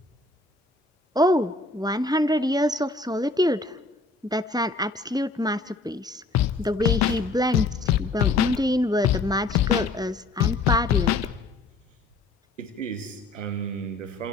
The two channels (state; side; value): quieter; right; 3.2 dB